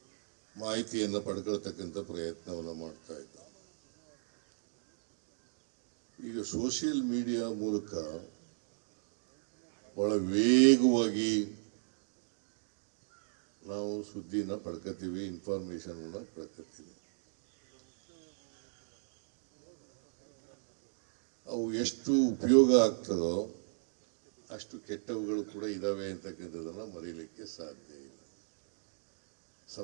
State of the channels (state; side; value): silent; left; digital silence